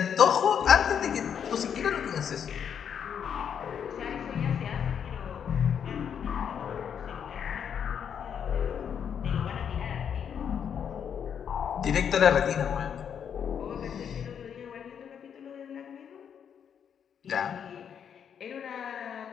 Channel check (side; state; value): right; quieter; 8.0 dB